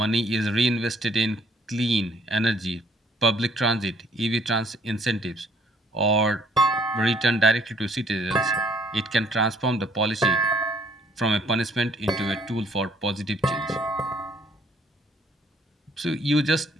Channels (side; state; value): both; normal; correlation 0.62